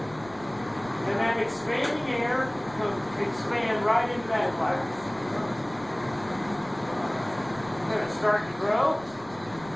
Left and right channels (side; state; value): right; noise; rumble, 20 dB below the sound